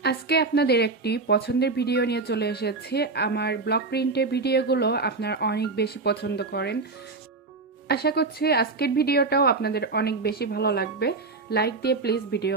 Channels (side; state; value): left; quieter; 3.9 dB